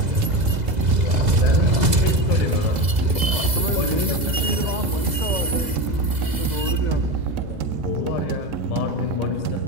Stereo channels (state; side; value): late; left; 2.0 ms